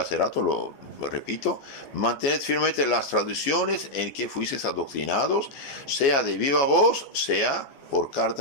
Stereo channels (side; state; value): right; late; 14 ms